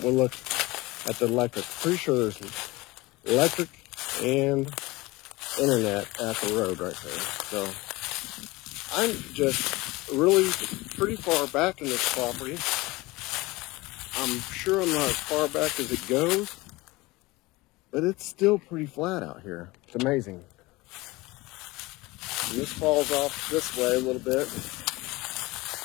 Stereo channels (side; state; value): right; quieter; 21.5 dB